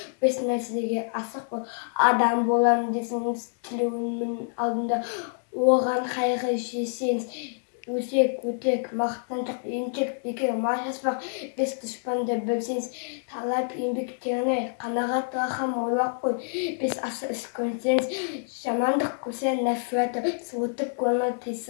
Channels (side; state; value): right; silent; digital silence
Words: Бес нәрседе асық бол. Адам болам десеңіз тілеуімнің алдында. Оған қайғы жесеңіз. Өсек, өтек, мақтаншақ, еншек, бекер, машаспақ, бес дұшпанды білсеңіз, талап еңбектеріне қанағат рахым ойлап қой, бес асы іс көрсеңіз, жамандық көрсең нәфраты, суытып көңіл